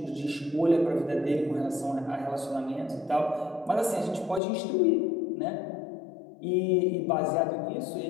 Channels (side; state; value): right; drops out; at 4.4 s